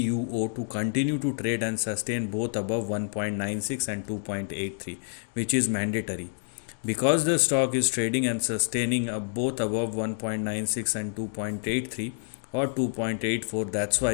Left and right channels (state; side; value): silent; right; digital silence